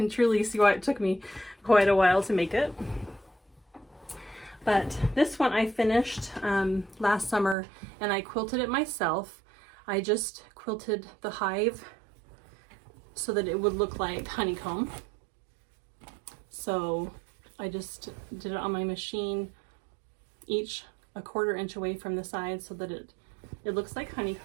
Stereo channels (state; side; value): drops out; left; at 7.6 s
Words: truly see why it took me quite a while to make it. But this one I finished last summer, and I quilted it myself. I just quilted the hive so that it would look like honeycomb. So I just did it on my machine, each a 1/4 inch away from the side so that it looks like